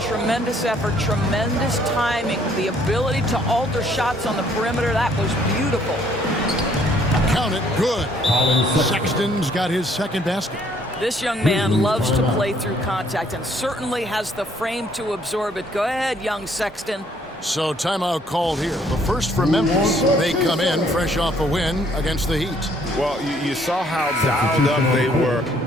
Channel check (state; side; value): normal; both; correlation 0.64